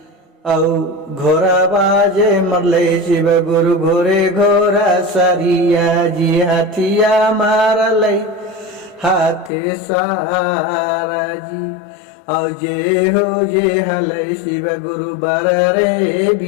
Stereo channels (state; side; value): drops out; right; at 9.5 s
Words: औ घोरा बाजे मरले शिव गुरु घोरे घोरा सरिया जी, हाथिया मारले हाथे सारा जी, और जे हो जे हले शिव गुरु बरे